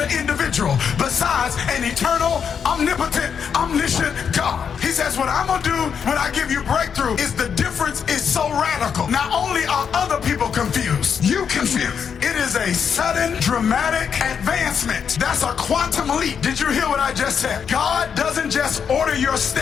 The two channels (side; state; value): right; quieter; 7.1 dB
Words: individual besides an eternal, omnipotent, omniscient God. He says, what I'm gonna do when I give you breakthrough is the difference is so radical. Not only are other people confused, you confused. It is a sudden, dramatic advancement. That's a quantum leap. Did you hear what I just said? God doesn't just order your